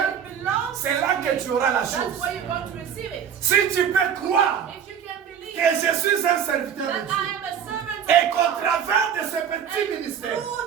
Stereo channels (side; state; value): left; quieter; 8.2 dB